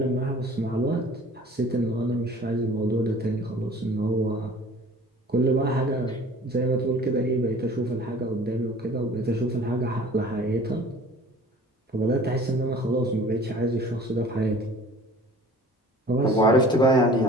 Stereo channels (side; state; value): both; normal; correlation 0.47